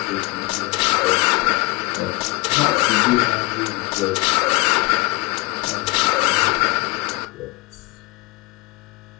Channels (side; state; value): right; quieter; 23.8 dB